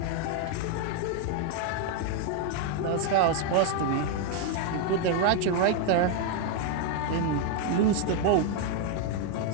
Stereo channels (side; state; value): both; different; correlation 0.00